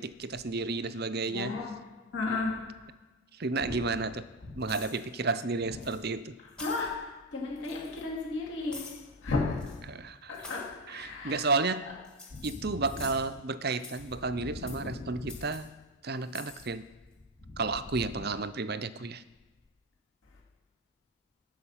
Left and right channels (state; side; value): normal; both; correlation 0.12